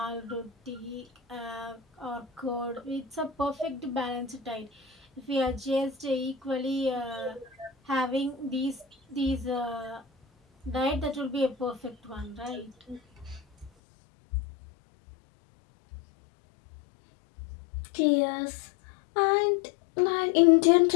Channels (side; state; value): right; drops out; at 13.7 s